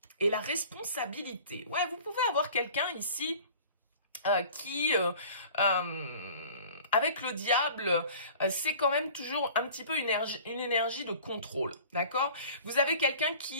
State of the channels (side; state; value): both; inverted; correlation -0.45